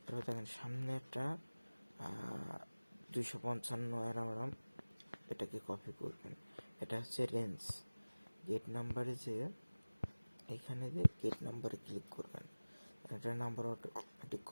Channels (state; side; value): inverted; both; correlation -1.00